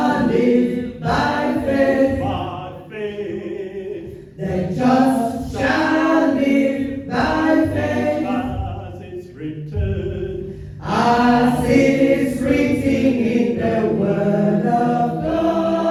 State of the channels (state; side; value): identical; both; correlation 1.00